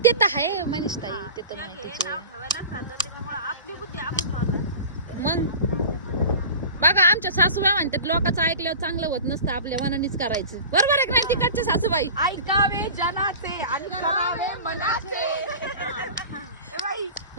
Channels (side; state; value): both; inverted; correlation -0.36